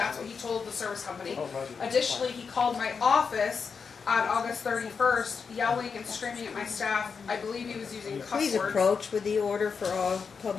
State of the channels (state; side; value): quieter; right; 5.7 dB